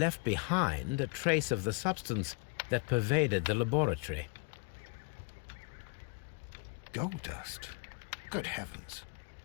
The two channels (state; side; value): quieter; right; 30.8 dB